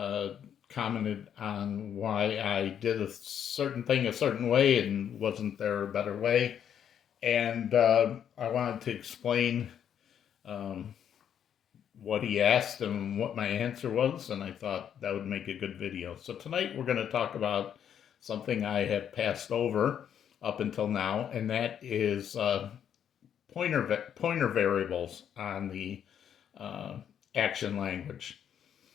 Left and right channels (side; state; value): right; quieter; 9.0 dB